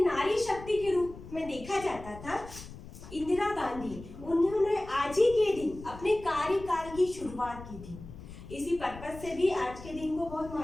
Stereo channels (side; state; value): left; noise; rumble, 15 dB below the sound